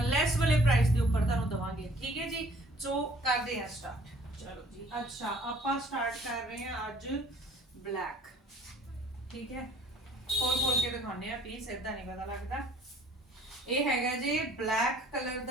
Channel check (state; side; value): normal; both; correlation 0.56